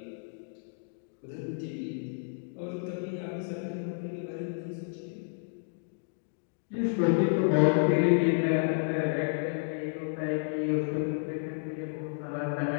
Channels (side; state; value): right; silent; digital silence